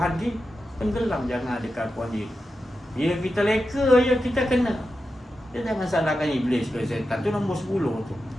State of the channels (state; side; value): normal; both; correlation 0.90